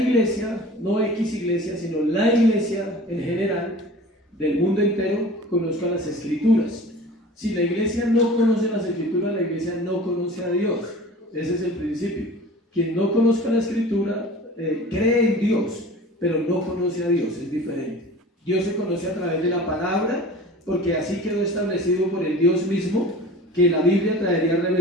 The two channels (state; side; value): normal; both; correlation 0.41